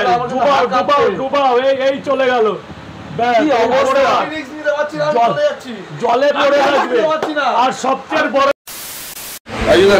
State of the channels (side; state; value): both; identical; correlation 1.00